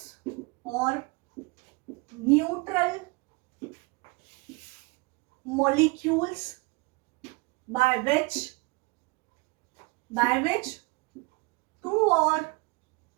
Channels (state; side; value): quieter; left; 27.0 dB